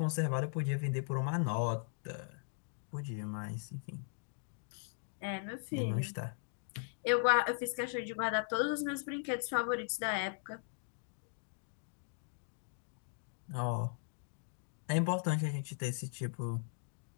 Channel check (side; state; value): right; silent; digital silence